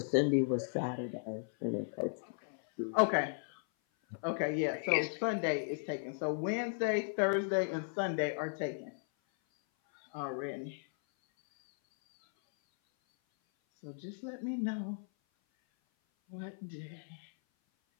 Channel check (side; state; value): right; silent; 54 dB below the other